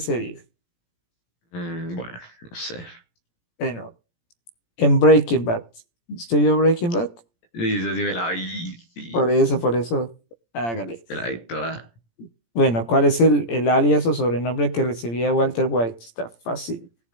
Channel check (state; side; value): late; right; 17 ms